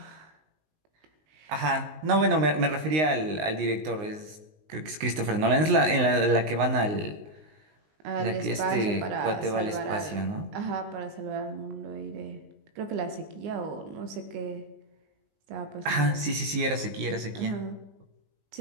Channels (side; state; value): left; late; 19 ms